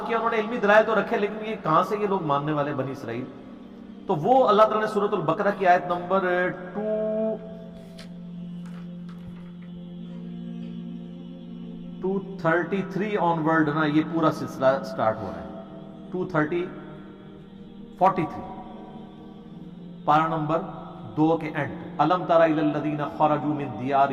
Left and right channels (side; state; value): both; identical; correlation 1.00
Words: کیا انہوں نے علمی دلائل تو رکھے لیکن یہ کہاں سے یہ لوگ ماننے والے بنی اسرائیل، تو وہ اللہ تعالیٰ نے سورۃ البقرہ کی آیت نمبر 233 آن ورڈ نا یہ پورا سلسلہ سٹارٹ ہو رہا ہے۔ 43 پارہ نمبر 2 کے اینڈ، الم تر الی الذین خرجوا من